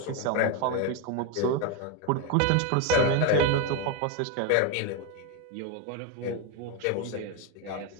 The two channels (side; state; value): both; different; correlation 0.02